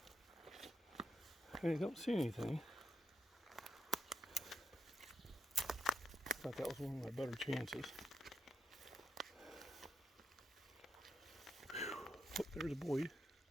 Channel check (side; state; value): both; normal; correlation 0.85